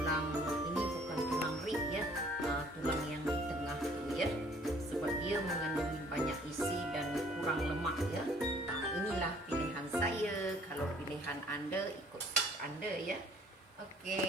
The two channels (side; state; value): both; normal; correlation 0.57